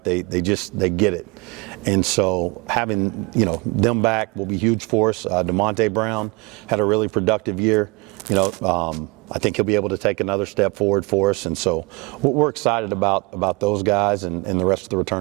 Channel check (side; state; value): left; quieter; 27.3 dB